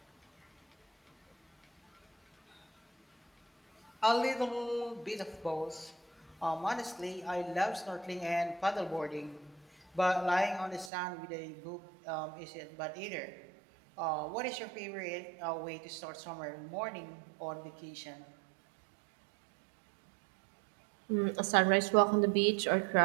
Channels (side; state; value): left; drops out; at 10.9 s